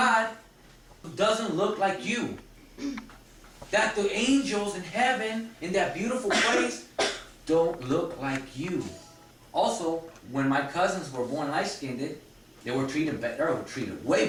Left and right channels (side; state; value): both; identical; correlation 1.00